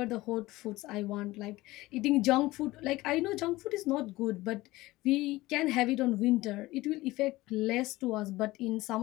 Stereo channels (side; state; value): right; quieter; 18.9 dB